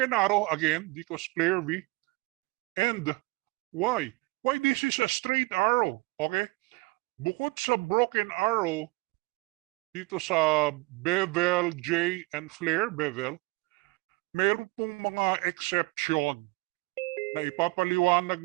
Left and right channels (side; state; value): left; quieter; 24.5 dB